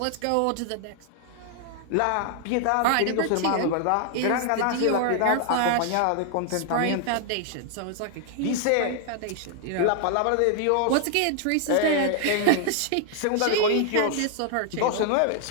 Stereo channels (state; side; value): different; both; correlation 0.00